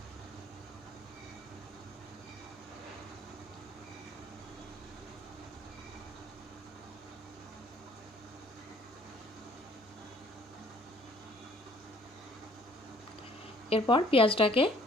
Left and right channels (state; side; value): normal; both; correlation 0.58